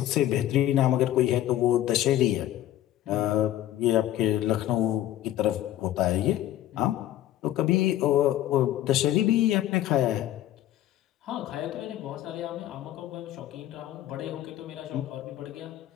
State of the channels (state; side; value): quieter; right; 13.2 dB